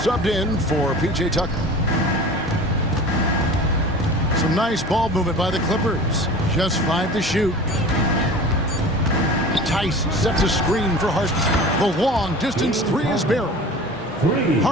in for P.J. Tucker. Some nice ball movement by the Clippers. Just 5 to shoot. Tice sets a screen for Harden. The long-distance 3 is buried.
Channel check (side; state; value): both; normal; correlation 0.38